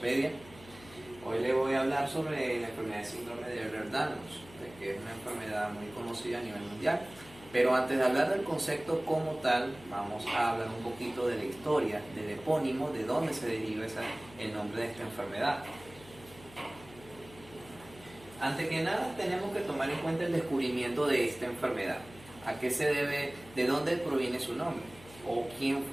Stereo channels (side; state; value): left; noise; hum, 20 dB below the sound